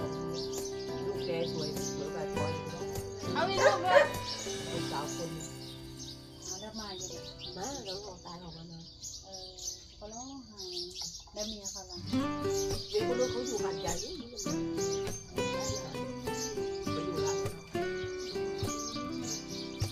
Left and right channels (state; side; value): identical; both; correlation 1.00